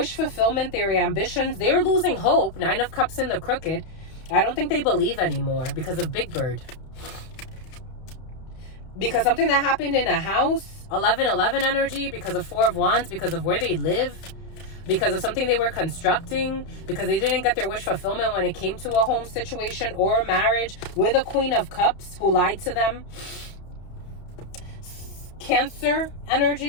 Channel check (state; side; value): late; right; 31 ms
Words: fulfillment, their ambitions, they're losing hope. 9 of Cups in the crooked. I don't think they believe anymore because of Big Bird. Because something that happened in a house, 11-11 energy, because of 4 of Wands, because of where they live, because of something they were constructing, because they didn't get their wish fulfillment when it came to a home situation or a marriage, with a Queen of Cups who lied to them. Cancer